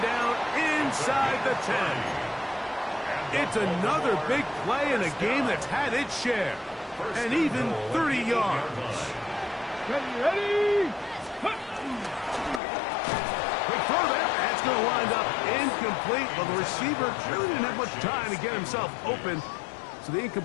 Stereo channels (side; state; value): right; drops out; at 12.6 s